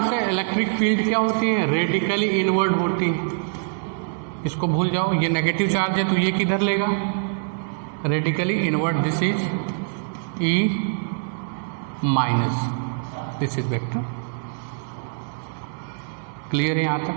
से इलेक्ट्रिक फील्ड क्या होती है? रेडिकली इनवर्ड होती है. इसको भूल जाओ, ये नेगेटिव चार्ज है तो ये किधर लेगा? Radically inward. This is E minus, this is vector. Clear है यहाँ तक?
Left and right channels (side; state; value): left; silent; digital silence